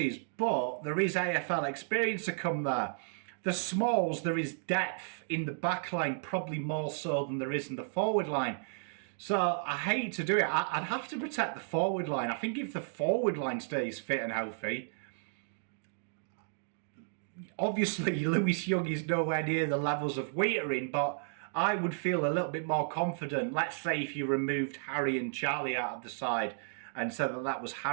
but there is AFL experience to come there. The smalls, there is depth in the back line, probably more so than there is in the forward line. So I hate to do it. I'd have to protect the forward line. I think if the forward line stays fit and healthy, obviously Lewis Young is nowhere near the levels of Whittaker, but I would feel a little bit more confident. Let's say if you removed Harry and Charlie out of the side and said that that was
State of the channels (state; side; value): silent; left; digital silence